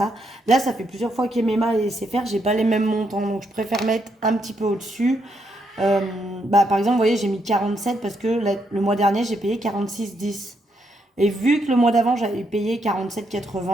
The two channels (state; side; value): normal; both; correlation 0.77